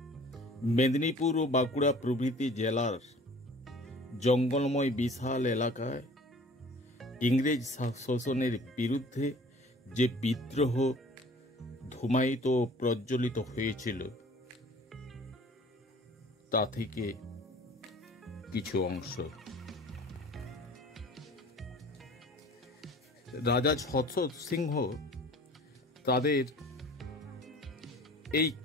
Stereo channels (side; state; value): both; normal; correlation 0.48